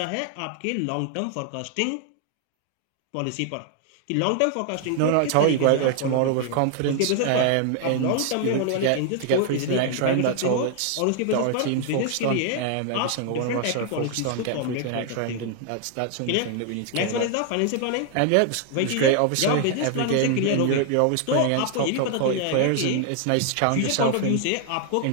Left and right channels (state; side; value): different; both; correlation 0.00